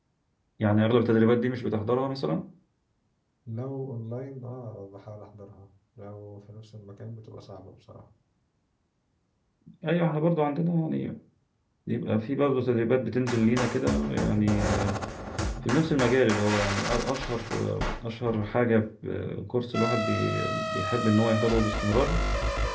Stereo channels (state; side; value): identical; both; correlation 1.00